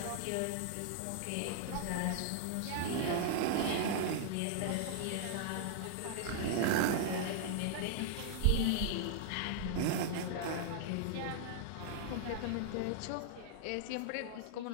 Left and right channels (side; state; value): both; different; correlation -0.01